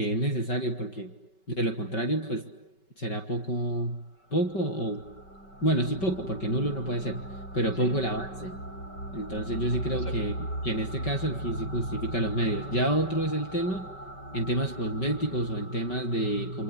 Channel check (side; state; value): right; late; 5.3 ms